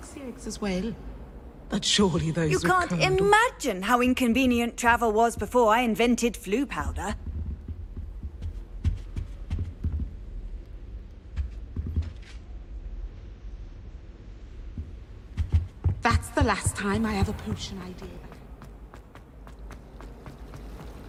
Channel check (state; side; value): identical; both; correlation 1.00